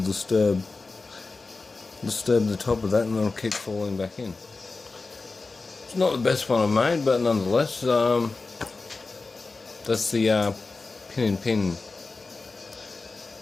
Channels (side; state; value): right; quieter; 3.8 dB